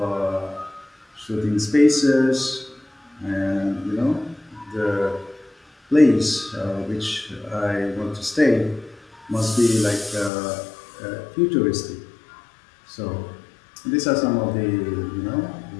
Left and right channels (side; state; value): right; drops out; at 10.3 s